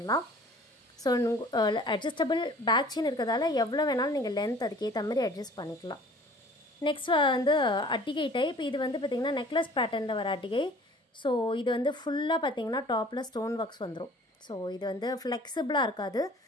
ஸோ அட்ஜஸ்டபிள் பேக் செயின் இருக்கிறதால எவ்வளோ வேணாலும் நீங்கள் லென்த் அதுக்கேற்ற மாதிரி அட்ஜஸ்ட் பண்ணிக்கலாம். நெக்ஸ்ட் வந்து அட்டிகை டைப். இது வந்து பார்த்திங்கன்னா நெக்லஸ் பேட்டர்னில் வர அட்டிகை. ஸோ இது வந்து ஃபுல்லாக பார்த்திங்கன்னா டாப்பில் ஸ்டோன் ஒர்க்ஸ் வந்துடும். ஸோ இது வந்து ஃப்ளெக்சிபிளாக இருக்காது.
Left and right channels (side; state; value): both; normal; correlation 0.50